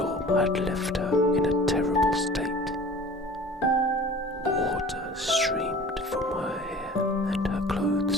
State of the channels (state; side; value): normal; both; correlation 0.44